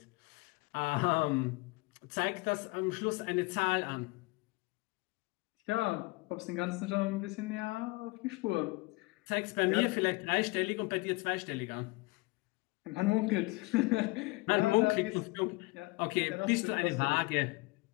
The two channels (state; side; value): quieter; right; 24.5 dB